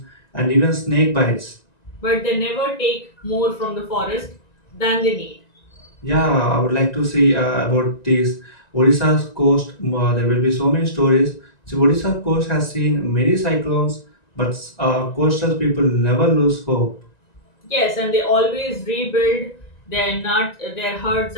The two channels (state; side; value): late; right; 1.9 ms